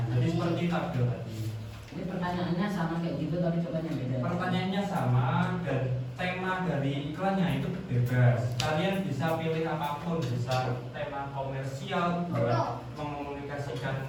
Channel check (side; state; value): both; identical; correlation 1.00